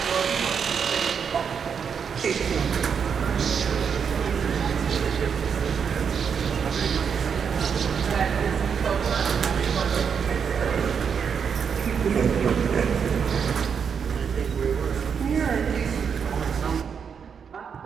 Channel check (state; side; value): quieter; left; 6.8 dB